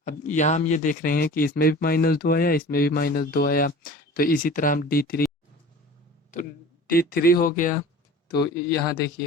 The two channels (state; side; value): normal; both; correlation 0.40